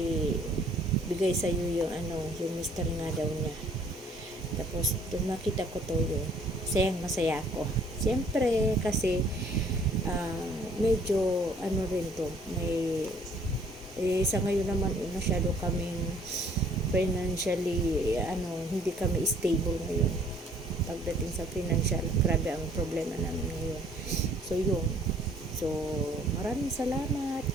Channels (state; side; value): normal; both; correlation 0.59